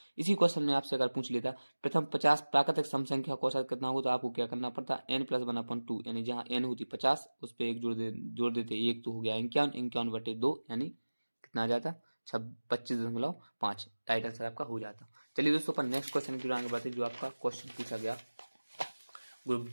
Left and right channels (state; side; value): inverted; both; correlation -1.00